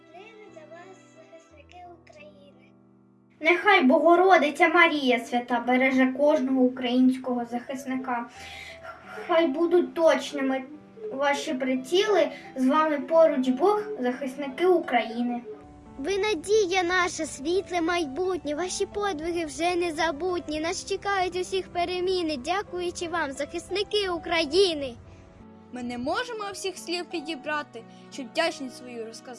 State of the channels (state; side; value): identical; both; correlation 1.00